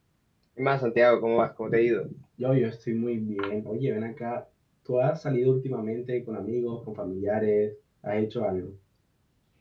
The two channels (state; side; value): identical; both; correlation 1.00